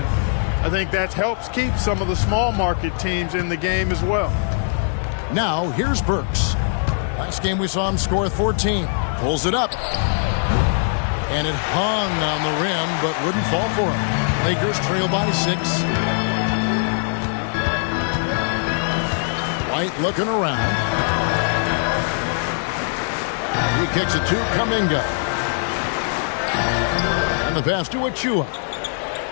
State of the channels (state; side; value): silent; right; digital silence